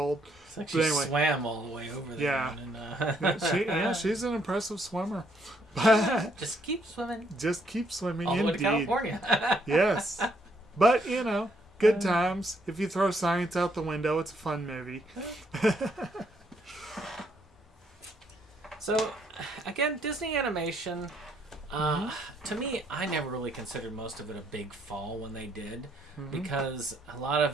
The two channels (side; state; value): both; normal; correlation 0.71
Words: It's like she swam all the way over there. Yeah. She's an impressive swimmer. Just keep swimming. Just keep swimming, all the way indeed. to California. Yes. But, good times. If you throw science out the window, it's a fun movie. So, again, Disney animation, to me, I never really considered most of it a big fall when they did, because a lot